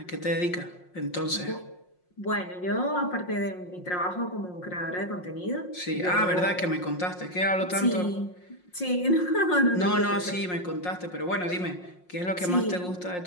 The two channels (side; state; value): right; late; 5.6 ms